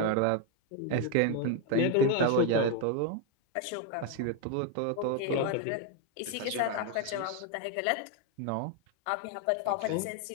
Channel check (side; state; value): both; different; correlation 0.01